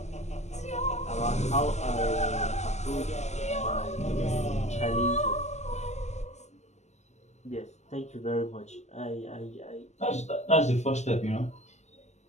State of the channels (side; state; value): right; late; 0.33 ms